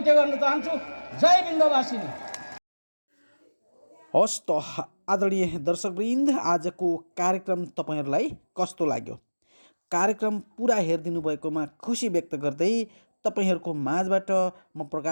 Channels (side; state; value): both; inverted; correlation -1.00